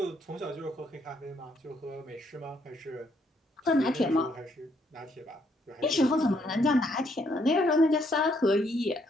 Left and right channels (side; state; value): both; normal; correlation 0.71